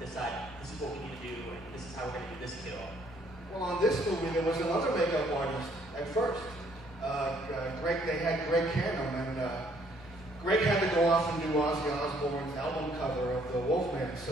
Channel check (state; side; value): normal; both; correlation 0.65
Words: this is what we need to do, and this is how we're going to do this kill? Well, on this movie, there was another makeup artist at first. They had Greg Canham, and Greg had to go off and do Ozzy Osbourne's album cover of the Wolfman,